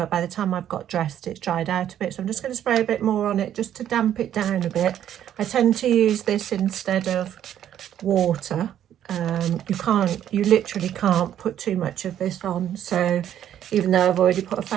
by the time I've got dressed it's dried out a bit, so I'm just going to spray a bit more on it just to damp it down a bit. I tend to use this instead of water. You literally can't put too much of this on, so even though I've already put a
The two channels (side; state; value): left; quieter; 10.6 dB